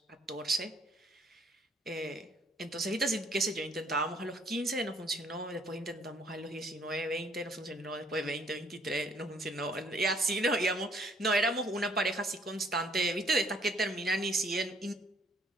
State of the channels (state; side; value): normal; both; correlation 0.63